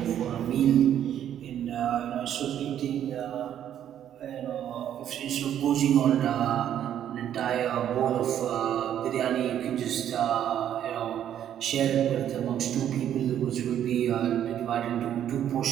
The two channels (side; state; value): left; quieter; 10.3 dB